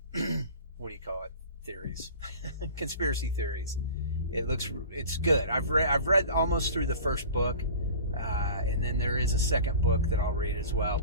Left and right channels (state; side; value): inverted; both; correlation -0.40